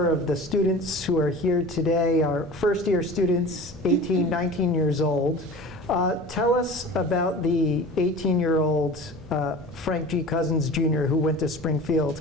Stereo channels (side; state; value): both; normal; correlation 0.38